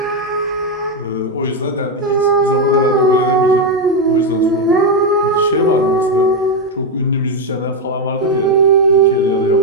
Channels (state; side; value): normal; both; correlation 0.05